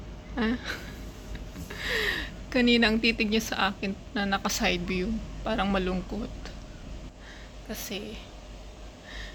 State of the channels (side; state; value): both; identical; correlation 1.00